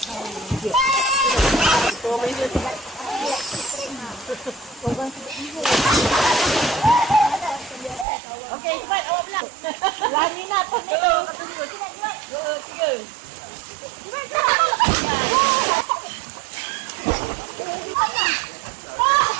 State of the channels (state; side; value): drops out; left; at 8.1 s